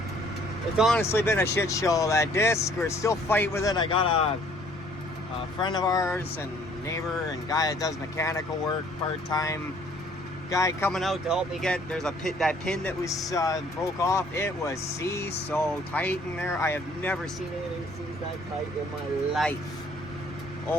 it's honestly been a shit show. That disc, we're still fighting with it. I got a friend of ours and neighbor and guy that does mechanical work part-time. Guy coming out to help me get, there's that pin that was broke off. It was seized so tight in there. I have never seen anything seized that tight in my life.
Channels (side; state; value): both; normal; correlation 0.59